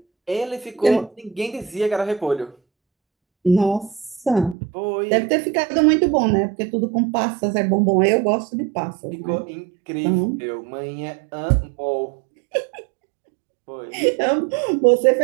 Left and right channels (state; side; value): drops out; left; at 4.5 s